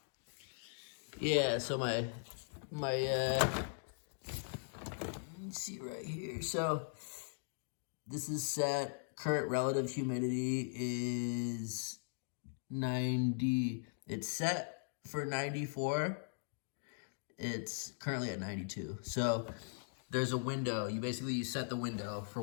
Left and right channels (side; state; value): right; silent; digital silence